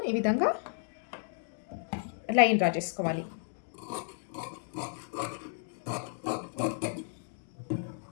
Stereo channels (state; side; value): silent; right; 56 dB below the other